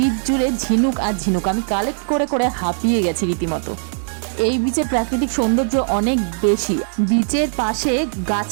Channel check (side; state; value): left; silent; digital silence